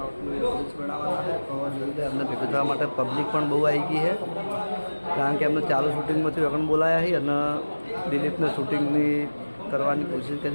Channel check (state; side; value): inverted; both; correlation -1.00